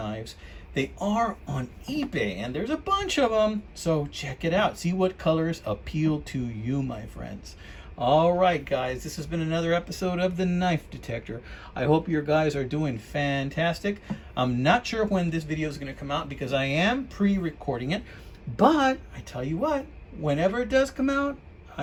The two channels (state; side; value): identical; both; correlation 1.00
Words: they are on eBay, and there's a bunch of them. So check it out. See what colors appeal to you, my friends. All right, guys, this has been another episode of The Knife Detector. I hope your guys are doing fantastic. I'm not sure when this video is going to come out because I am pre-recording it, but I tell you what, whenever it does come out,